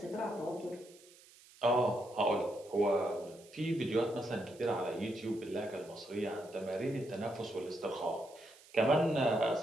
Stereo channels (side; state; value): right; noise; hiss, 24 dB below the sound